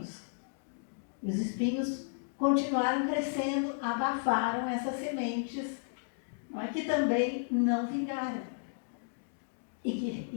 Os espinhos continuaram crescendo, abafaram essas sementes, não é, que também não vingaram.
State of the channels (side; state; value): right; silent; digital silence